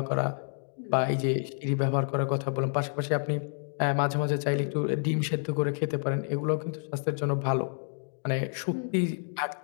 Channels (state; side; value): silent; right; 58 dB below the other